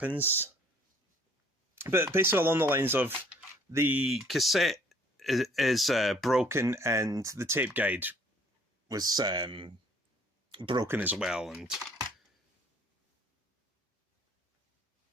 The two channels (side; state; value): both; normal; correlation 0.58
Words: But basically along the lines of the cassette is broken, and the tape guide was broken as well. And